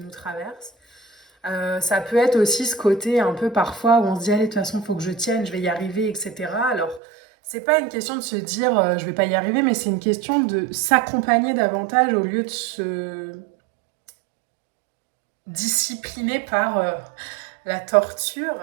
traverse. Ça peut être aussi ce côté un peu parfois où on se dit allez, de toute façon, il faut que je tienne, je vais y arriver, etc. Alors, c'est pas une question de se dire je vais pas y arriver, mais c'est une question de s'accompagner davantage au lieu de se discipliner par la torture,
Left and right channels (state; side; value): drops out; left; at 7.0 s